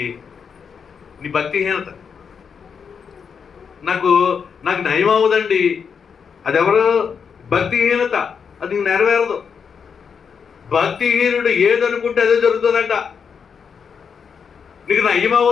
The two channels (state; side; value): quieter; right; 6.5 dB